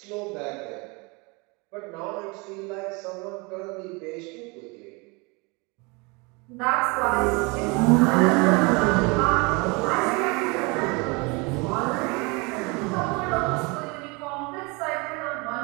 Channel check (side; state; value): left; quieter; 28.4 dB